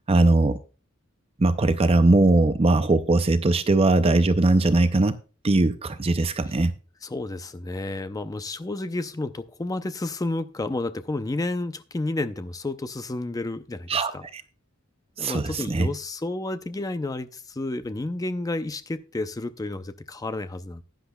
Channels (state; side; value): normal; both; correlation 0.79